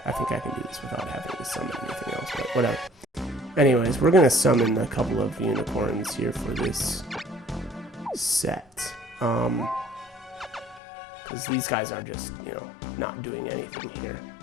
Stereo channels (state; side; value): drops out; right; at 10.8 s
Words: I think I can do this without having to summon anything else. But whatever. Anyways, we're gonna summon a couple of unicorns here for this set. Because these guys are just, you know, not doing anything here,